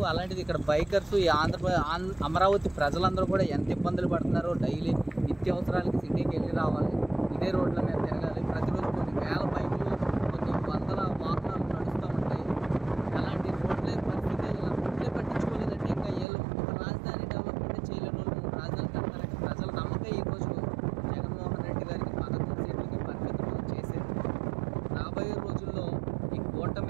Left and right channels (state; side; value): drops out; left; at 16.2 s